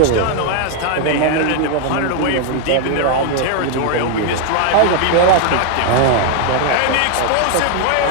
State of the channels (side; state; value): both; different; correlation 0.00